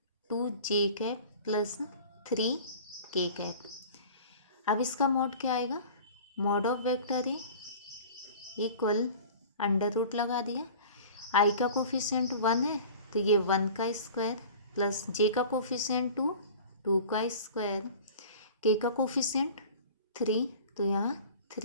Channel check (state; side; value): inverted; both; correlation -0.41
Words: 2j cap plus 3k cap. अब इसका मॉड क्या आएगा, mod of vector A equal √ लगा दिया, आई का कोफिशिएंट 1 है तो ये 1 का स्क्वायर प्लस जे का कोफिशिएंट 2 का स्क्वायर, के का कोफिशिएंट 3 तो यहाँ